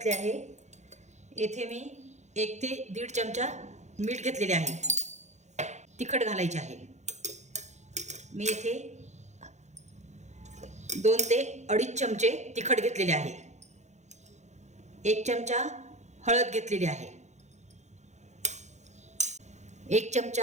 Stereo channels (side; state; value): left; late; 0.33 ms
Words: आहे. येथे मी 1 ते 1.5 चमचा मीठ घेतलेले आहे. तिखट घालायचे आहे. मी येथे 2 ते 2.5 चमचे तिखट घेतलेले आहे. 1 चमचा हळद घेतलेली आहे. 1